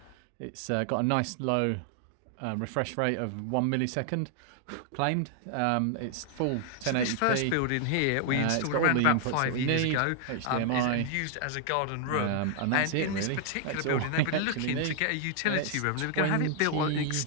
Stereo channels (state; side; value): different; both; correlation 0.00